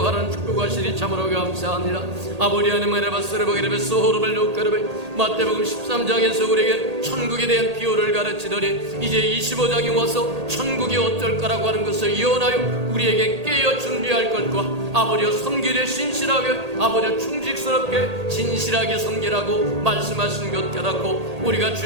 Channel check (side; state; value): left; late; 1.8 ms